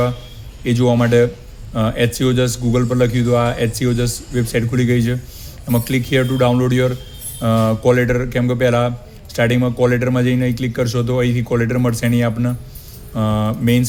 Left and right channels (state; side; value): identical; both; correlation 1.00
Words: એ જોવા માટે HC ઓજસ ગૂગલ પર લખ્યું હતું. આ HC ઓજસ વેબસાઇટ ખુલી ગઈ છે. એમાં click here two download your call letter, કેમ કે પહેલાં સ્ટાર્ટિંગમાં કોલ લેટરમાં જઈને અહીં ક્લિક કરશો તો અહીંથી કોલ લેટર મળશે નહીં આપને.